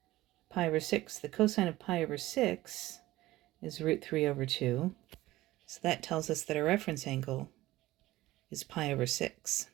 pi over 6. The cosine of pi over 6 is root 3 over 2. So that tells us that our reference angle is pi over 6.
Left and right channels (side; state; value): left; quieter; 17.0 dB